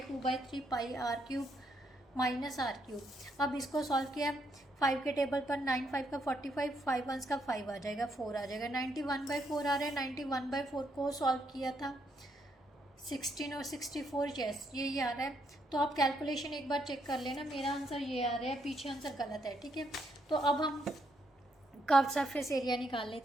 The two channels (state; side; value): normal; both; correlation 0.75